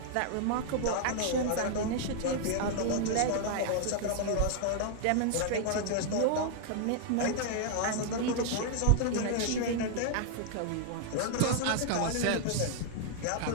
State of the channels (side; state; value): both; different; correlation -0.01